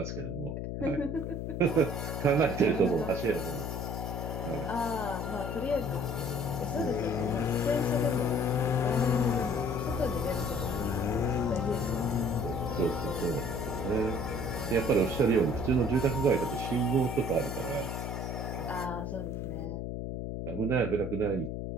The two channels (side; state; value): left; noise; hum, 4 dB below the sound